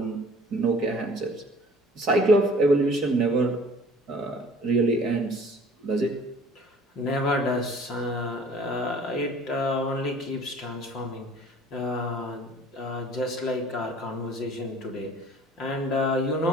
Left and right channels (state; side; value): normal; both; correlation 0.49